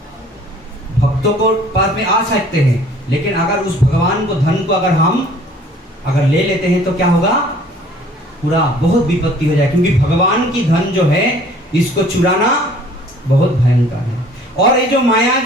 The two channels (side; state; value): both; normal; correlation 0.54